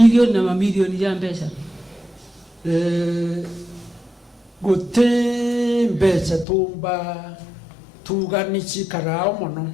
ya mbeca guti mbeca tumba tuganichi karao mono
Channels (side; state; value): right; drops out; at 6.5 s